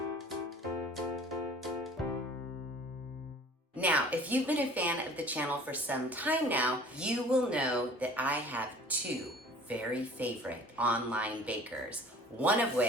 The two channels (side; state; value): both; normal; correlation 0.48